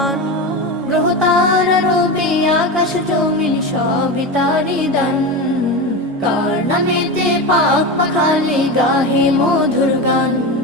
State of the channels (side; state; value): both; normal; correlation 0.21